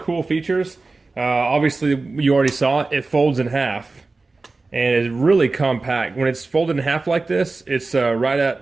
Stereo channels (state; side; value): quieter; left; 3.6 dB